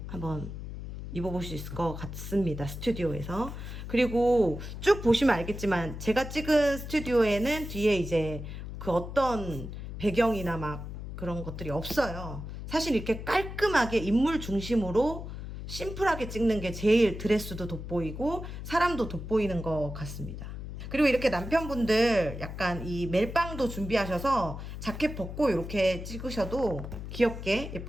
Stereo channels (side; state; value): left; noise; hum, 8 dB below the sound